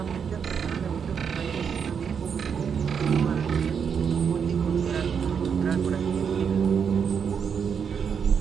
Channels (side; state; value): left; quieter; 6.9 dB